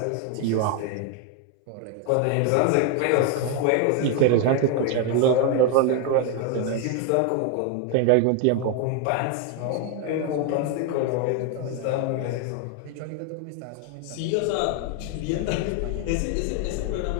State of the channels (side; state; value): both; different; correlation 0.01